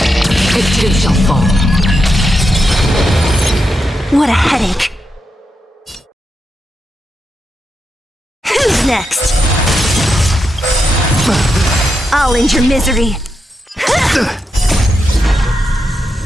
It too shall fall. What a headache. Who's next? I'll end your misery.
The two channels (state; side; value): normal; both; correlation 0.85